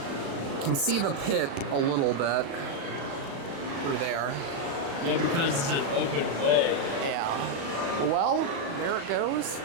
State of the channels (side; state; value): left; late; 36 ms